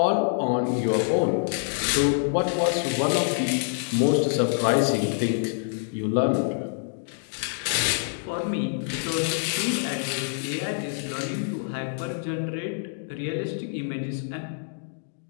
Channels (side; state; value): right; silent; digital silence